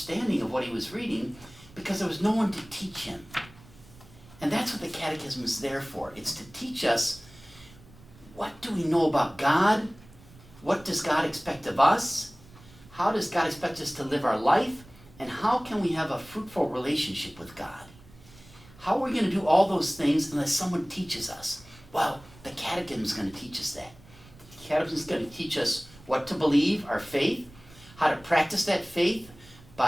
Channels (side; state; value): right; noise; rumble, 23 dB below the sound